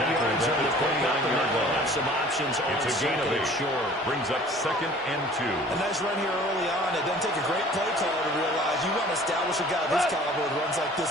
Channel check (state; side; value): normal; both; correlation 0.49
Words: at the 29-yard line. Some options on It's a gain of 8. short. Brings up 2nd and 2. A nice run here early on. It doesn't take a great play caller to realize you want to establish a guy of this caliber with runs like this